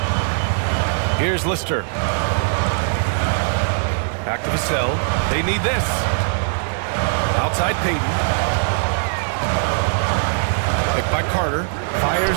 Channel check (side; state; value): left; silent; digital silence